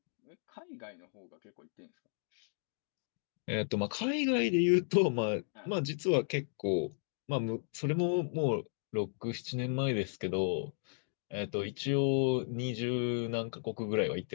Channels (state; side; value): silent; right; digital silence